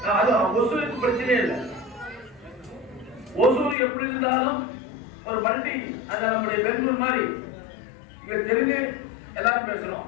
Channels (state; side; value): drops out; right; at 3.8 s